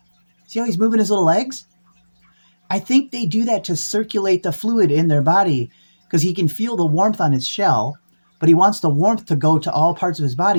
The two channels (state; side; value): inverted; both; correlation -1.00